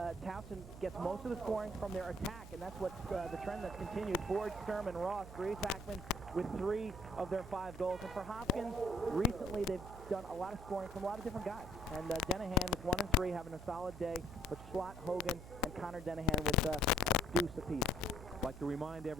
Towson gets most of the scoring from their attack, and that's what the trend that's continued. Ford, Sturm, and Ross, Grace Hackman with 3 of their 5 goals. And for Hopkins, recently they've done a lot of scoring from a lot of different guys. And Denahan with 1 and 3 having a solid day, but Schlott, Hogan, and Connor Denahan with a deuce apiece. I'd like to remind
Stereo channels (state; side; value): noise; right; hum, 14 dB below the sound